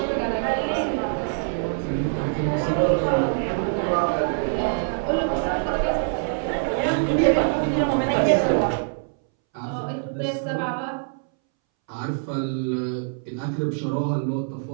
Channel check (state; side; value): silent; left; 62 dB below the other